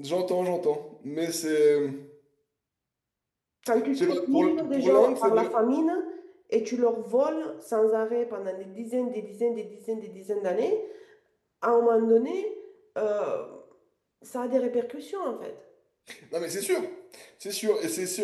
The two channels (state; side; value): identical; both; correlation 1.00